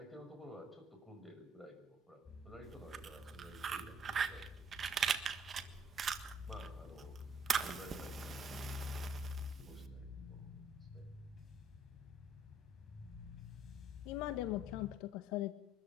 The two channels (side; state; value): both; normal; correlation 0.62